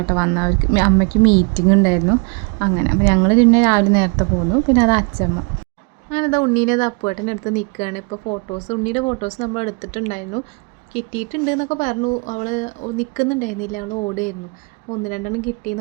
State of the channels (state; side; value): quieter; left; 33.5 dB